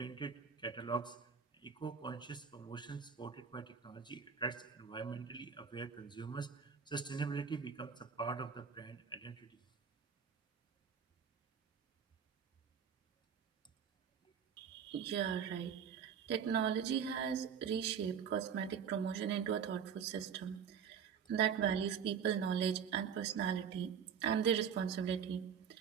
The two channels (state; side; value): quieter; left; 7.2 dB